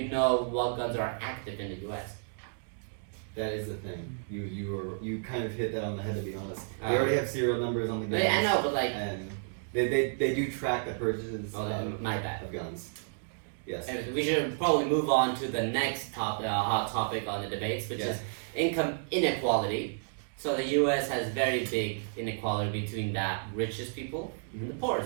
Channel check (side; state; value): left; silent; digital silence